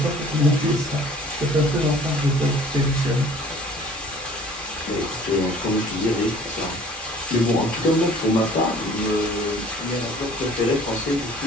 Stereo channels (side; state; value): both; normal; correlation 0.51